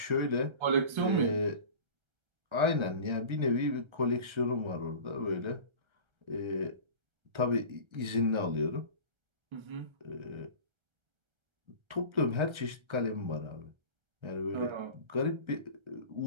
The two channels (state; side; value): late; left; 1.3 ms